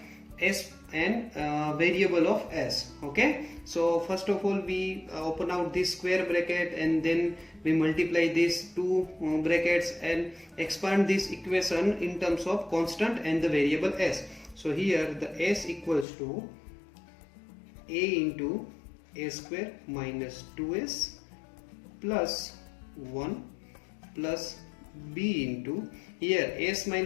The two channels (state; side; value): drops out; right; at 16.1 s